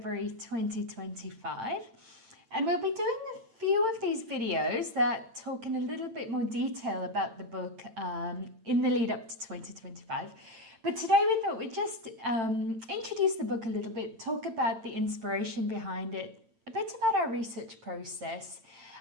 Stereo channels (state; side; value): late; left; 8.9 ms